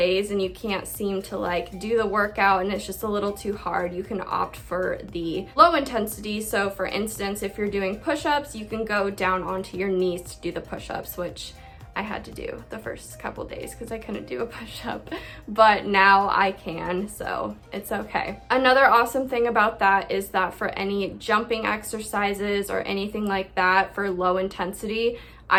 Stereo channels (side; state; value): both; identical; correlation 1.00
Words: and you can't seem to like do the workout and it's just a little too hard, you can opt for the low intensity. So for instance, if you're doing push-ups, you can go down onto your knees to do the push-ups, which I had to do the first couple days because I couldn't do a push-up, but now I can, so it's okay. Another awesome thing about that is that for any jumping exercises or anything like that for low intensity,